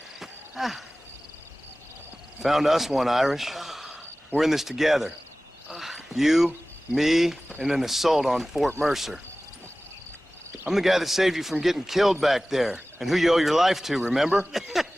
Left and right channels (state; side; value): normal; both; correlation 0.98